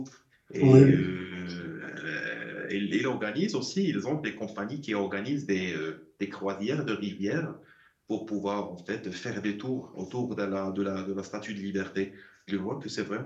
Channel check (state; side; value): identical; both; correlation 1.00